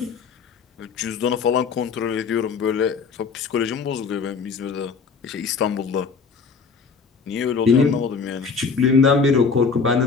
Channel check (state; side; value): quieter; right; 5.3 dB